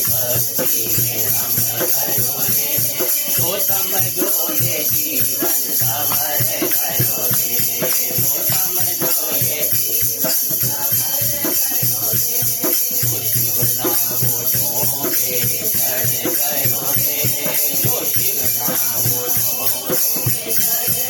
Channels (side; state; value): both; identical; correlation 1.00